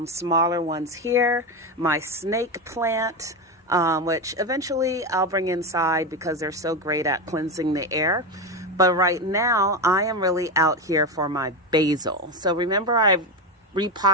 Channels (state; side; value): normal; both; correlation 0.15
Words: smaller ones here. My snake plant, which eventually I'll bring inside because they're so great at cleansing the air. But right now I am really out here for my basil. So remember, I've